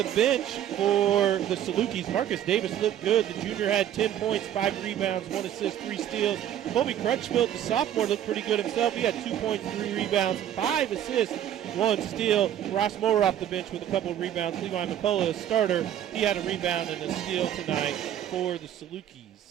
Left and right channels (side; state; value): left; quieter; 10.8 dB